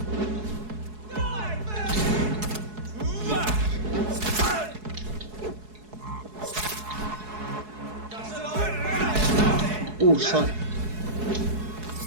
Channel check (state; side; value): late; left; 4.7 ms